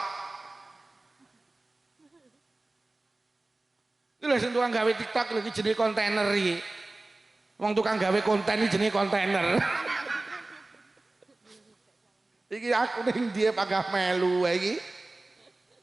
Lha sing tukang gawe TikTok lho iki jenenge kontainer iki. Wong tukang gawe konten iki jenenge kontainer. Iki aku ning dia pagah melu iki.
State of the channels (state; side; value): quieter; left; 3.0 dB